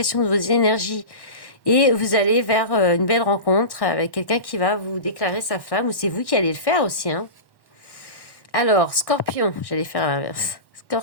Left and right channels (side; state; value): right; late; 1.1 ms